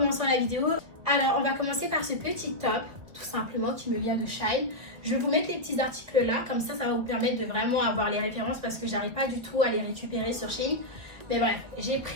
la vidéo. Alors on va commencer par ce petit top, tout simplement, qui me vient de Shine. Je vais vous mettre les petits articles là, comme ça va vous permettre de vraiment avoir les références parce que j'arrive pas du tout à les récupérer sur Shine. Mais bref, j'ai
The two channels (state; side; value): late; left; 1.8 ms